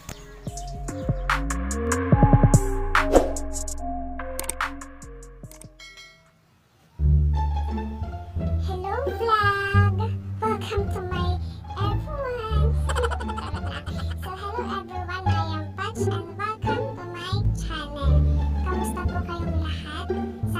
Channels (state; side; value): identical; both; correlation 1.00